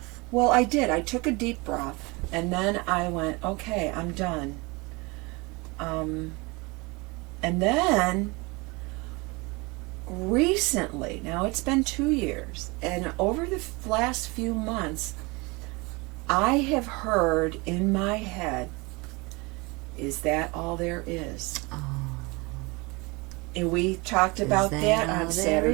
Well, I did. I took a deep breath, and then I went, okay, I'm done. And then recently, now it's been 2 years, and over the last few months, I have heard in my head, is that all there is? Oh. And we talked about that on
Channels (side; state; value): left; quieter; 26.1 dB